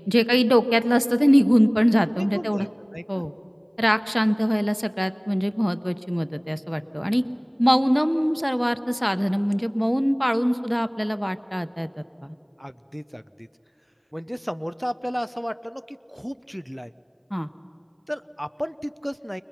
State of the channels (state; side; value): identical; both; correlation 1.00